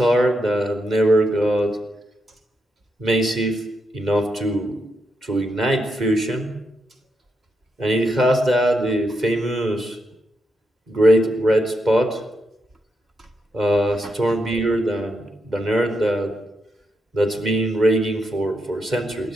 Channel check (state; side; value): normal; both; correlation 0.82